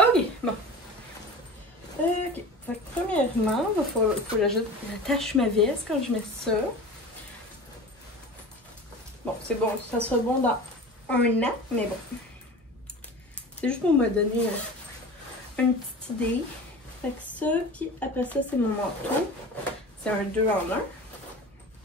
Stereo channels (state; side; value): normal; both; correlation 0.35